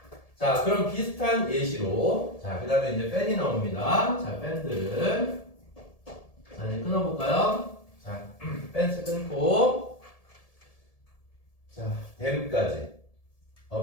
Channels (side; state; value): right; late; 1.7 ms